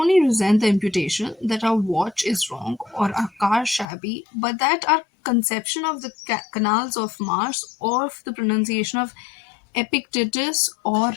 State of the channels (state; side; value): drops out; right; at 3.9 s